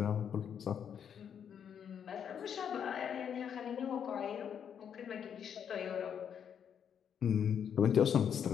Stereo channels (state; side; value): quieter; right; 8.1 dB